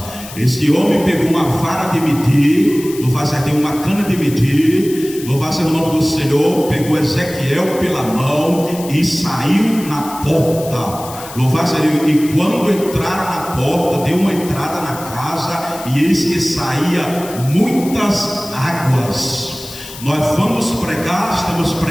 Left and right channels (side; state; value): left; noise; hiss, 14 dB below the sound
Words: Este homem pegou uma vara de medir, louvado seja Deus, uma cana de medir, louvado seja o nome do Senhor, pegou Ezequiel pela mão e saiu na porta. Louvado seja Deus. E quando entraram na porta, deu uma entrada na casa, e eis que saía muitas águas. Nós vamos pregar, estamos